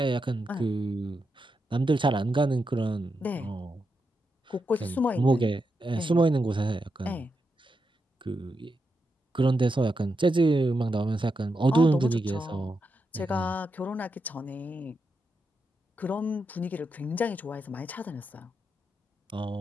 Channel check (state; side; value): normal; both; correlation 0.85